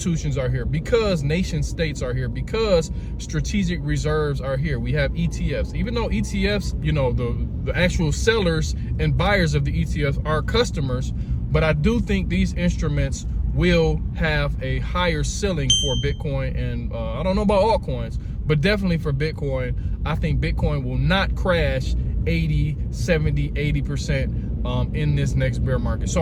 are here, because nation states are here, because strategic reserves are here. We have ETFs, even though ETFs, the actual sellers and buyers of the ETFs are customers, but I do think these instruments will have a higher ceiling for Bitcoin, and I don't know about altcoins, but definitely for Bitcoin. I think Bitcoin will not crash 80, 70, 80% in this next bear market.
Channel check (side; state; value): both; identical; correlation 1.00